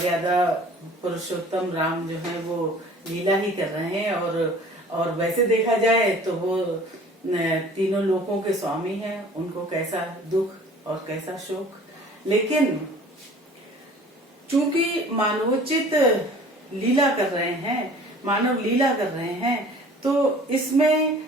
पुरुषोत्तम राम जो है वो लीला ही कर रहे हैं और वैसे देखा जाए तो वो तीनों लोकों के स्वामी हैं। उनको कैसा दुख और कैसा शोक, लेकिन चूंकि मानवोचित लीला कर रहे हैं, मानव लीला कर रहे हैं, तो इसमें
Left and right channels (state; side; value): normal; both; correlation 0.48